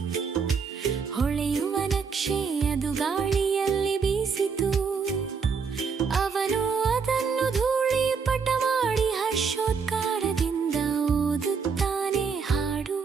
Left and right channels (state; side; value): quieter; left; 5.7 dB